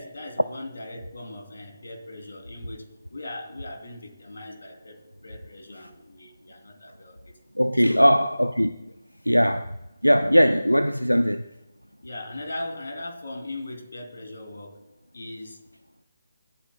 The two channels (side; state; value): both; inverted; correlation -0.99